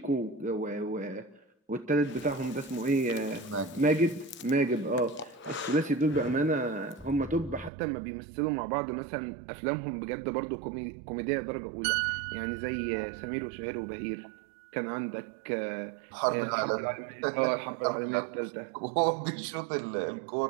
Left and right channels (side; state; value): left; drops out; at 7.7 s